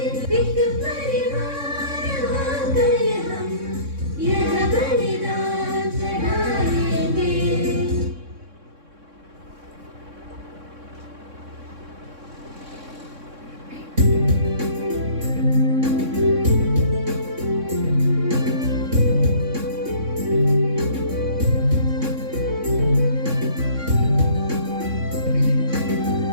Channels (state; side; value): late; left; 3.6 ms